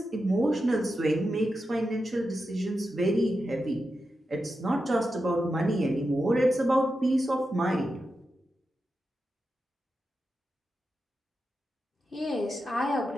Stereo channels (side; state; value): both; normal; correlation 0.89